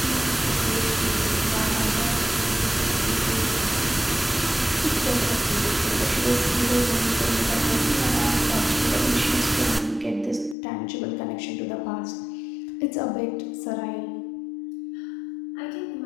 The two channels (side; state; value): right; drops out; at 10.6 s